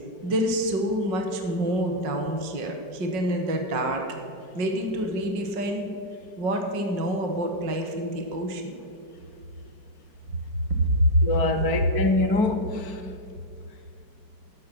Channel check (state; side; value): late; left; 5.4 ms